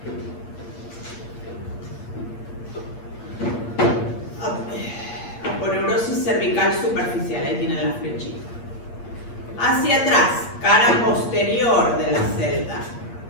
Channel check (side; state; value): right; late; 8.4 ms